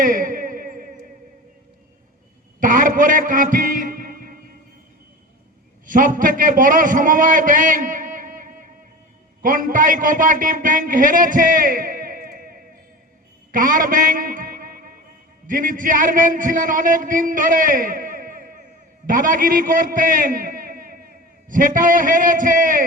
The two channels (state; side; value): normal; both; correlation 0.32